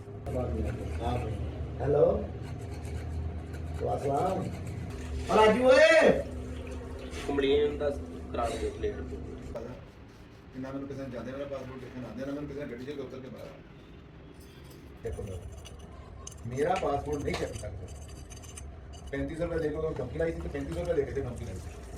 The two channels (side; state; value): both; identical; correlation 1.00